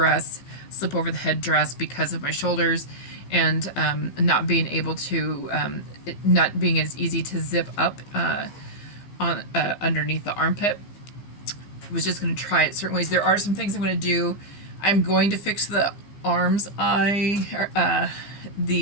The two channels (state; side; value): late; right; 15 ms